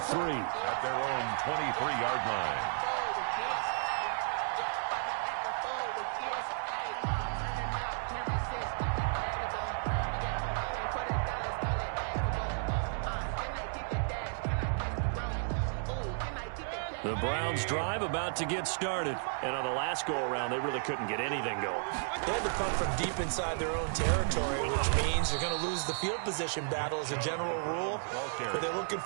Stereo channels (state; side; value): silent; left; 56 dB below the other